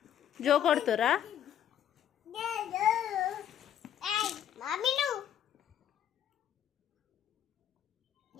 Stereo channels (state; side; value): quieter; right; 10.0 dB